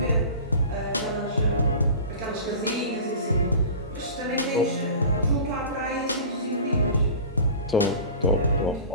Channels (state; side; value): inverted; both; correlation -0.36